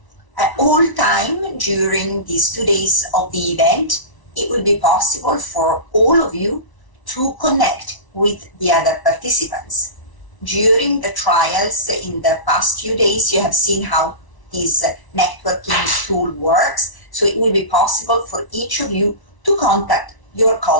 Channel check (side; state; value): right; late; 1.0 ms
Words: At all time during these 2 days of the event, it will be possible for all of you to connect with the other participants. During the trials in the past few days, you have seen how this networking tool works. So it will be possible for each of you to contact your